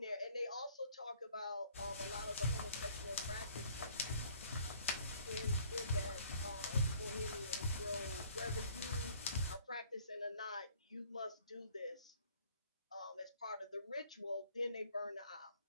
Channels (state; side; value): inverted; both; correlation -0.57